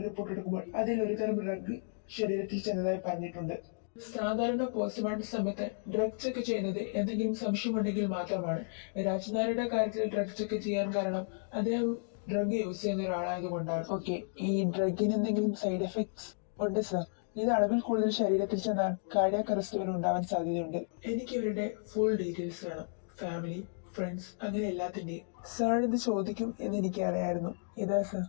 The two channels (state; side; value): silent; right; digital silence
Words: റിപ്പോർട്ട് എടുക്കുമ്പോൾ അതിൽ ഒരു തരം ഡ്രഗ് ശരീരത്തിൽ ചെന്നതായി പറഞ്ഞിട്ടുണ്ട്. സാധാരണ പോസ്റ്റ്മോർട്ടം സമയത്ത് ഡ്രഗ് ചെക്ക് ചെയ്യുന്നത് എന്തെങ്കിലും സംശയമുണ്ടെങ്കിൽ മാത്രമാണ്. രാജ് നായരുടെ കാര്യത്തിൽ ഡ്രഗ് ചെക്ക് ചെയ്യാൻ കാരണം അദ്ദേഹം ഡ്രഗ് യൂസ് ചെയ്യുന്ന ഒരാളായതുകൊണ്ടാണ്. ഓക്കെ, ഈ ഡ്രഗിന് എന്തെങ്കിലും സൈഡ് എഫക്ട്സ് ഉണ്ട് സർ. ഇത് അളവിൽ കൂടുതൽ ശരീരത്തിൽ ചെന്നാൽ കാർഡിയാക് അറസ്റ്റ് വരെ ഉണ്ടാവാൻ സാധ്യതയുണ്ട്. എനിക്ക് ഇവരുടെ ഫുൾ ഡീറ്റെയിൽസ് വേണം. ഫാമിലി, ഫ്രണ്ട്സ്, അങ്ങനെ എല്ലാത്തിന്റെയും. സാർ ഇത് ചോദിക്കും എന്ന് എനിക്ക് അറിയായിരുന്നു. ഇതാ സർ.